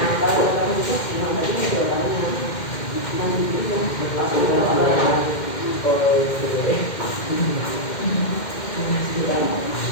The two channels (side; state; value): right; late; 2.1 ms